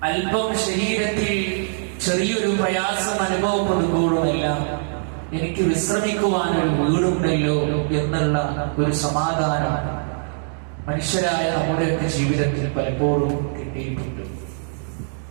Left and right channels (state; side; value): silent; left; digital silence